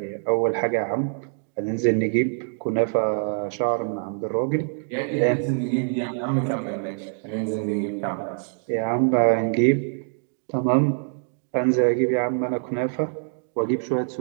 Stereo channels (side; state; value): left; silent; 60 dB below the other